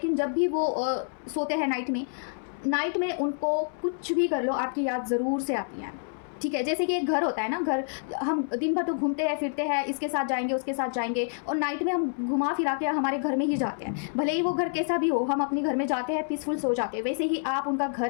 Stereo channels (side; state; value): right; silent; 59 dB below the other